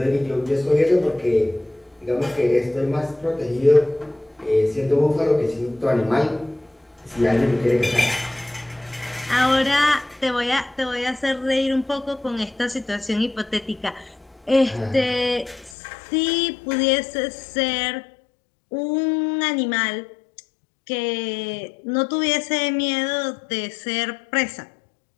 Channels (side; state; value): right; drops out; at 15.8 s